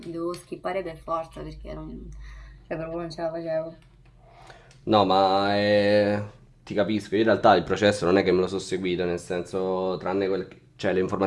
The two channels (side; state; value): both; identical; correlation 1.00